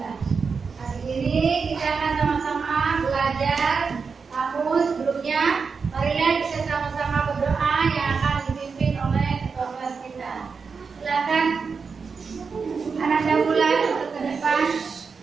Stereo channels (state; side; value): quieter; left; 5.3 dB